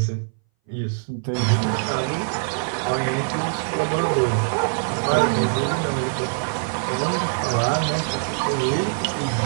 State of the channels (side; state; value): left; silent; 60 dB below the other